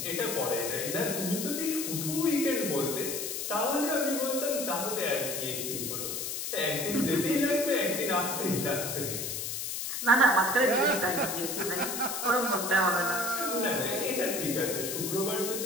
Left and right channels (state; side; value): noise; left; hiss, 4 dB below the sound